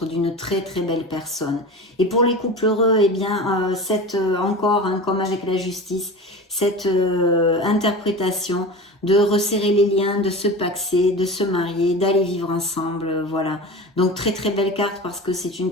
d'une très très belle personne. Et pour les couples heureux, eh bien, encore, hein, comme avec la justice, cette interprétation de resserrer les liens, de se paxer, de se marier, d'aller vivre ensemble, voilà. Donc très très belle carte parce que c'est une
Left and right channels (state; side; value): normal; both; correlation 0.31